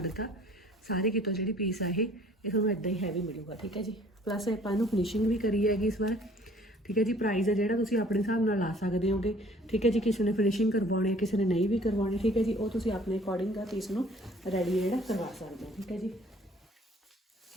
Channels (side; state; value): both; normal; correlation 0.54